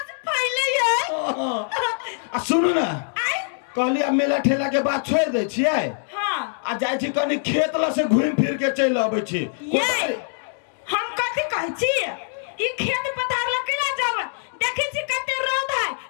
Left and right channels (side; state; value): right; silent; 63 dB below the other